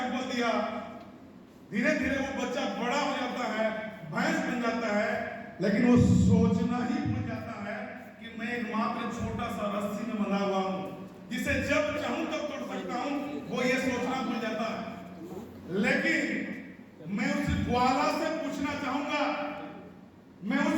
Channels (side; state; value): both; identical; correlation 1.00